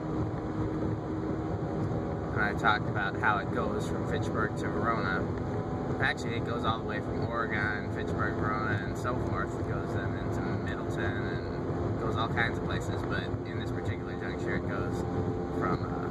And I talked about how it goes from Fitchburg to Verona. Actually, it goes all the way from Oregon, Fitchburg, Verona, and so forth. It goes then into Middleton and goes all kinds of places, but in this particular juncture it goes from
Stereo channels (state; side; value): identical; both; correlation 1.00